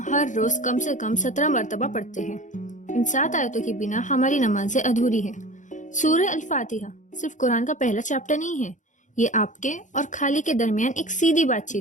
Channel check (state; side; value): late; right; 0.36 ms